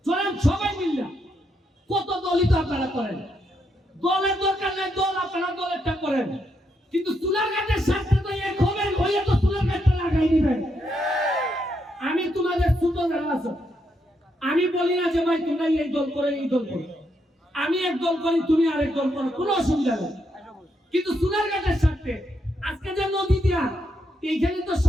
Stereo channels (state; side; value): normal; both; correlation 0.79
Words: চলেন, সবাই মিললা। কত দলই তো আপনারা করেন, দলের দরকার নেই, দল আপনারা দলেরটা করেন, কিন্তু সোনারঘাটের সাথে তো এক হবেন, হইলে তো সোনারঘাটটা লাগাই দিবেন। আমি তোমাদের ছোট যারা আছো, আমি বলি না যে ভাই তোমরা এই দল করে এই দল করো, আমি এক দল করি তুমি আরেক দল করো, কোনো অসুবিধা নেই। কিন্তু সোনারঘাটের সাথে আজকে যে নদী দিয়া এইখানে তো